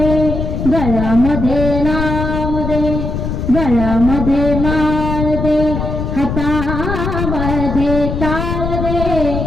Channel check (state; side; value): noise; left; rumble, 3 dB below the sound